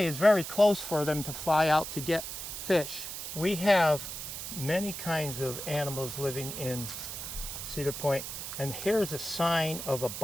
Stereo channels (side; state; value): right; noise; hiss, 7 dB below the sound